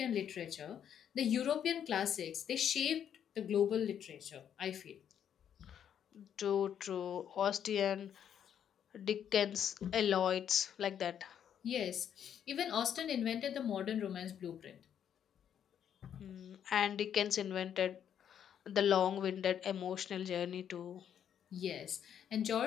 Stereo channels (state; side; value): quieter; right; 9.1 dB